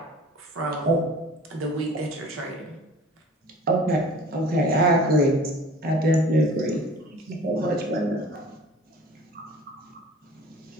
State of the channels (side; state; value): both; normal; correlation 0.45